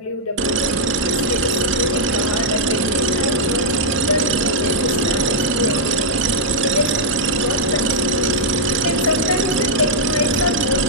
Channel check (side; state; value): both; normal; correlation -0.06